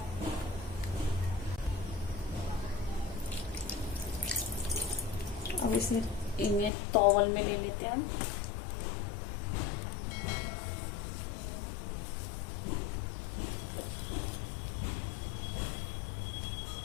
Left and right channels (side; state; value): right; drops out; at 6.7 s